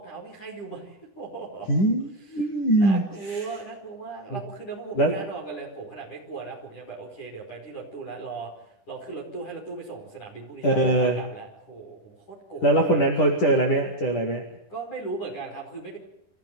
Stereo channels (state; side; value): late; right; 10 ms